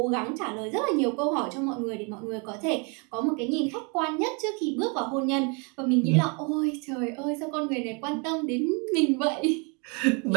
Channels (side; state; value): left; quieter; 33.7 dB